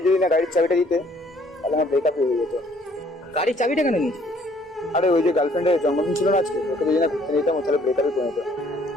যদি না গাড়ির চাবিটা দিতে তাহলে আমার ব্রেকআপ হয়ে যেত। গাড়ির চাবিটা কেন নিস? আরে ওই যে গার্লফ্রেন্ডের জন্মদিন ছিল না আজকে, ওকে যদি না ঘুরতে নিতাম তাহলে ব্রেকআপে পরিণত।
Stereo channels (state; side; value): normal; both; correlation 0.62